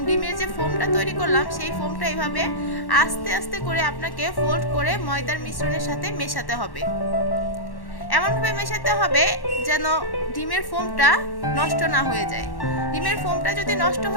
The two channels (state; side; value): late; right; 1.1 ms